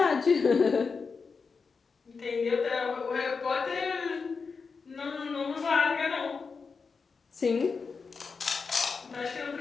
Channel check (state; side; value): quieter; right; 5.0 dB